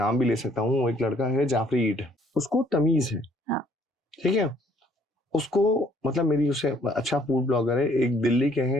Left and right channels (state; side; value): normal; both; correlation 0.63